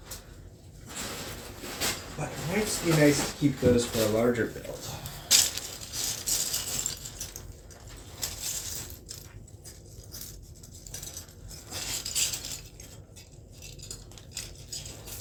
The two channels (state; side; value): identical; both; correlation 1.00